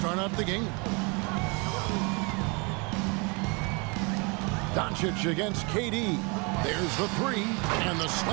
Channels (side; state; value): left; quieter; 30.8 dB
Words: out the game. Doncic against KD. There's the 3 and the